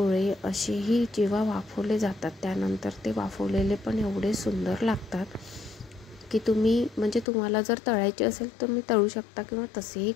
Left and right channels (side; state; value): right; drops out; at 7.2 s